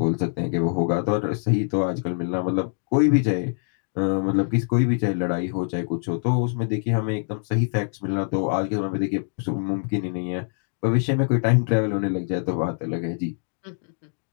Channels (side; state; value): right; silent; digital silence